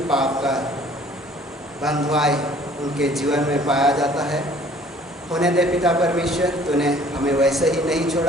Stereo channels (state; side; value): normal; both; correlation 0.54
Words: पाप का बंधुआई उनके जीवन में पाया जाता है। होने दे पिता परमेश्वर, तूने हमें वैसे ही नहीं